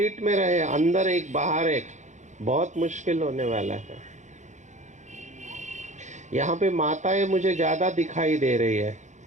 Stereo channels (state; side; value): late; left; 0.35 ms